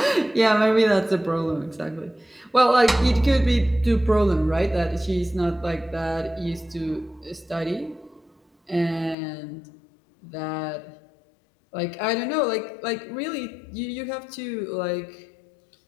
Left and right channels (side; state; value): right; drops out; at 9.2 s